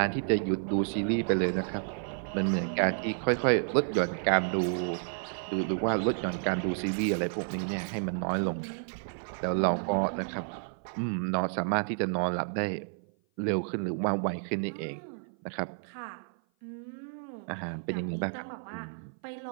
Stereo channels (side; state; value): left; silent; 55 dB below the other